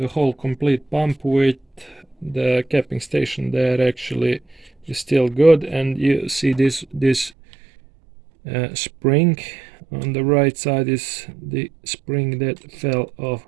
whole complete pump with the capping station there actually is still good, and you see this spring on the right side is the spring that fell off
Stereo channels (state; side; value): drops out; left; at 7.3 s